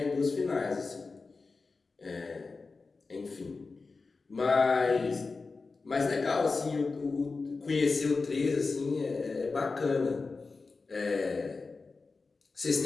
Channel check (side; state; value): right; quieter; 4.1 dB